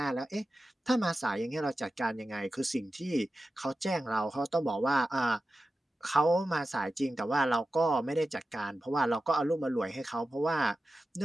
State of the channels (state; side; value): normal; both; correlation 0.93